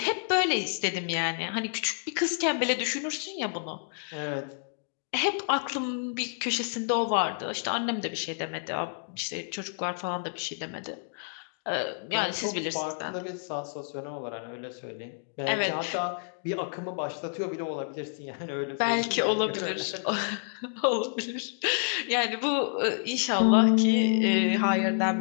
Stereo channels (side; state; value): right; silent; digital silence